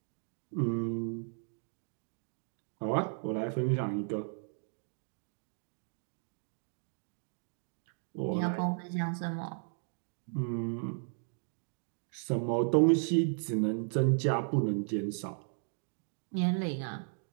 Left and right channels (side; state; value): left; silent; 54 dB below the other